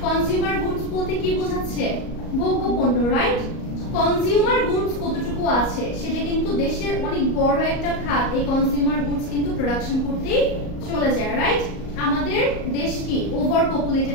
কনজিউমার গুডস বলতে কি বোঝাচ্ছে? ভোগ্য পণ্য, রাইট? কনজিউমার গুডস কতটুকু আছে সেটা কিন্তু দেশের অনেক বড় একটা খাত। এই কনজিউমার গুডস কিন্তু প্রোডাকশন করতেই চলে যায়, রাইট? আমাদের দেশ কি ওভার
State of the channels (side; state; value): right; late; 38 ms